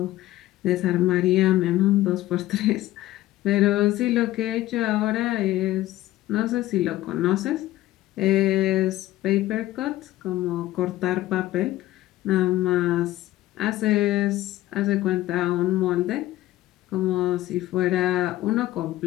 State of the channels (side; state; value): right; quieter; 15.7 dB